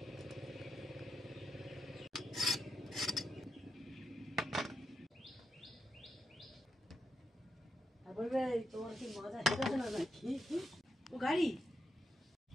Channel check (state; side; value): normal; both; correlation 0.84